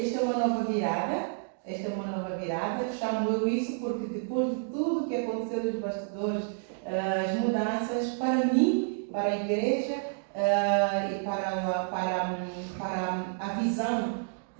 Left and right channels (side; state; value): left; silent; digital silence